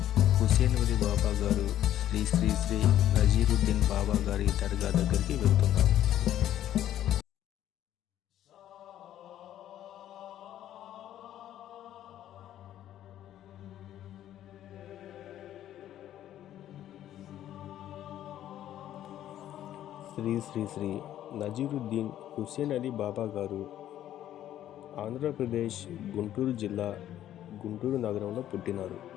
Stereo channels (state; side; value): quieter; right; 12.0 dB